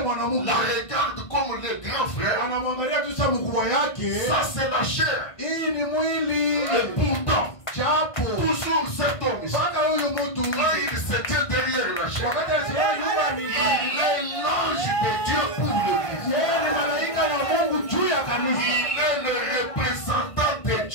comme le grand frère, ça c'est la chair. Et pourtant, toujours cet homme, quand il se tient derrière la chair, il est l'ange de Dieu pour l'église. Il est le représentant de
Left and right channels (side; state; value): right; late; 1.5 ms